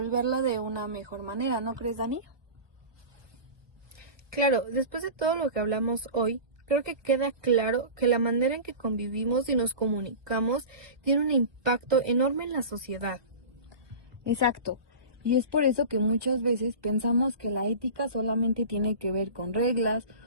de una mejor manera, ¿no crees, Dani? Claro, después de todo lo que hablamos hoy, creo que queda claro que la manera en que convivimos y nos comunicamos tiene un impacto enorme en la sociedad. Exacto. Y es por eso que muchas veces pensamos que la ética solamente tiene que ver con reglas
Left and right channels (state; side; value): late; left; 1.2 ms